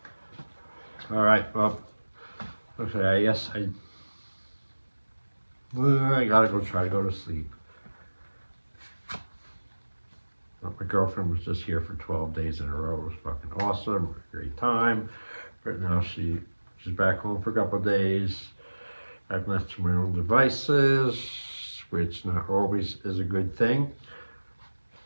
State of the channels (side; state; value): both; inverted; correlation -1.00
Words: All right, well, okay, I guess I gotta try to go to sleep. My girlfriend was just here for 12 days in a row. It was fucking awesome, great time. But now she's back home for a couple of days. I've left to my own devices, which not always is a good thing.